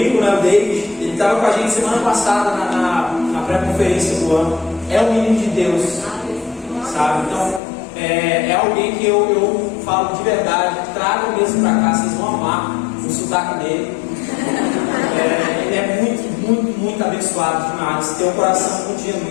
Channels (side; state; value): right; drops out; at 7.6 s